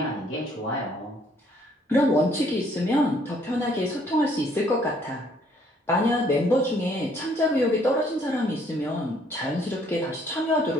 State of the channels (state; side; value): normal; both; correlation 0.64